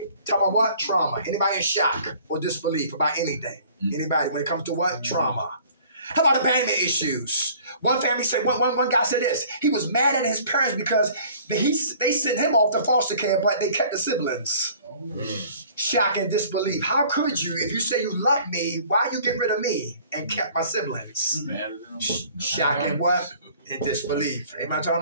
Tell me what? Trauma. Anybody in shock or disbelief about anything? Anybody when it comes to what? Trauma. How about abandonment issues? One family said, one guy said this. He was mad at his parents because they sent him off to foster care, but they kept the siblings. Shock and disbelief. How could you, if you say you love me, why you get rid of me and kept my siblings? Shock and what? And disbelief. Ain't I talking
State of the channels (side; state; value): both; inverted; correlation -0.52